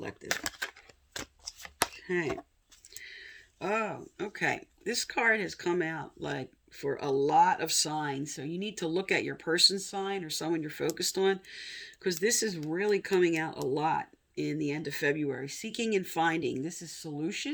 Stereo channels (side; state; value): both; identical; correlation 1.00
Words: Okay. Oh, okay. This card has come out like for a lot of signs. So you need to look at your person's sign or someone you're focused on, because this is really coming out a lot in the end of February. Seeking and finding. This is